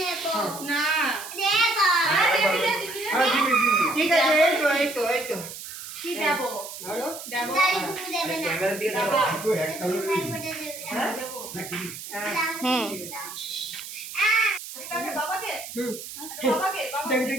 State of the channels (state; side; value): noise; right; hiss, 11 dB below the sound